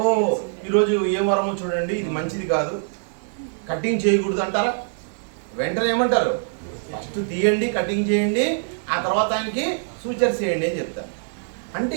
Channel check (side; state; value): left; silent; 63 dB below the other